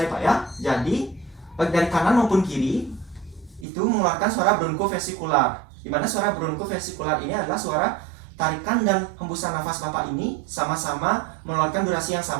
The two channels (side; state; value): left; drops out; at 3.7 s